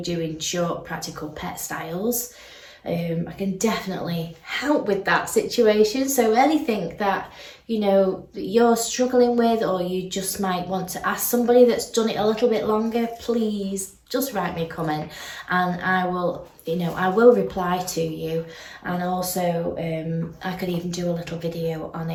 doing short practical pet styles. I can definitely help with that situation. So anything that, you know, that you're struggling with, or you just might want to ask somebody that's done it a little bit longer, please just write me a comment and I will, you know, I will reply to you. And also I could even do a little video on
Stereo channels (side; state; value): both; identical; correlation 1.00